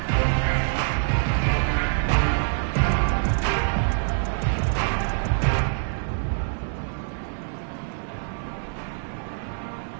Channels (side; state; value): left; silent; 60 dB below the other